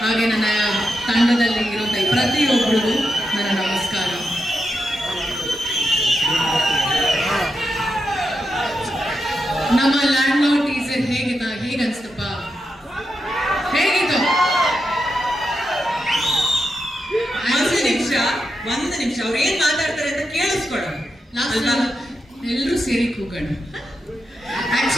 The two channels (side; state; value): both; normal; correlation 0.86